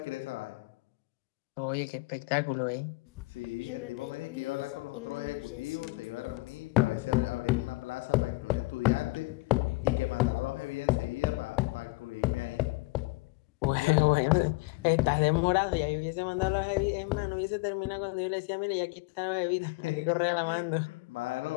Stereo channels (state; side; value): quieter; right; 24.2 dB